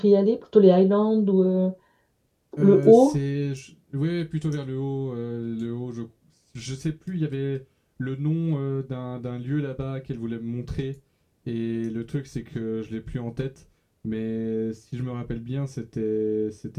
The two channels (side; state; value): both; identical; correlation 1.00